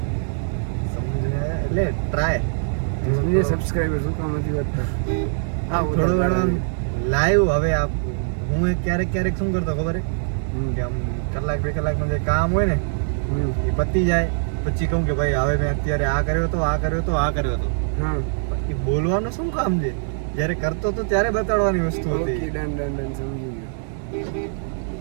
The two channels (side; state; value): left; silent; digital silence